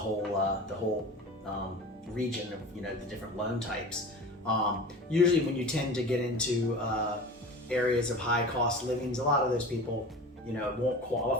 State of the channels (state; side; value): normal; both; correlation 0.35